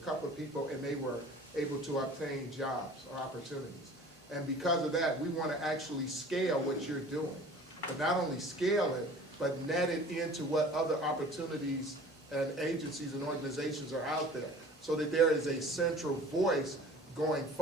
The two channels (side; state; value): both; normal; correlation 0.45